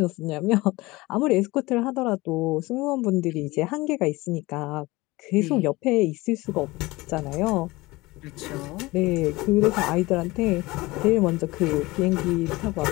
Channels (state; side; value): quieter; right; 21.3 dB